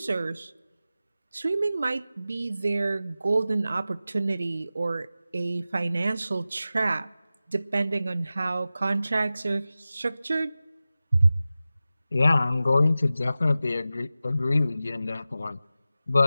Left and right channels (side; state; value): both; inverted; correlation -0.95